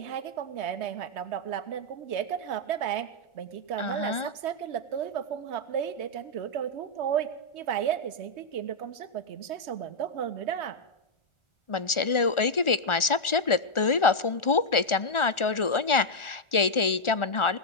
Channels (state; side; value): late; right; 1.4 ms